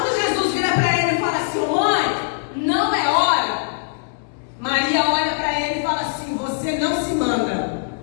Jesus vira para ele e fala assim: ô mãe, não é hora, Maria olha para ele e fala assim: você não se manda.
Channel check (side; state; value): right; silent; digital silence